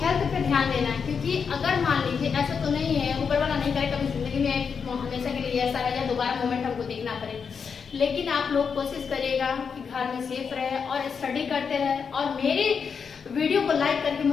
पे ध्यान देना है। क्योंकि अगर मान लीजिए ऐसा तो नहीं है, ऊपर वाला नहीं करे कभी जिंदगी में हमेशा के लिए ऐसा रहे या दोबारा मोमेंट हमको देखना पड़े, लेकिन आप लोग कोशिश करिएगा कि घर में सेफ रहे और स्टडी करते रहे। और मेरे वीडियो को लाइक करके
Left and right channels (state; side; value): quieter; right; 6.1 dB